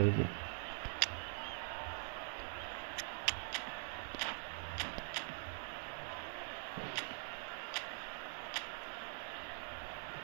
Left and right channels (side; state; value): left; silent; digital silence